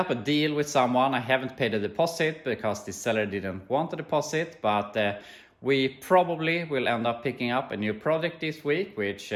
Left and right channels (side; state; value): both; identical; correlation 1.00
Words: a deal with someone. I haven't paid a deposit because the seller didn't want a deposit, but we probably will end up picking up a new project this week, which